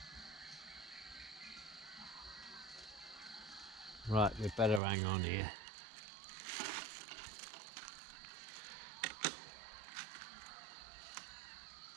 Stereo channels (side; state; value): left; drops out; at 4.8 s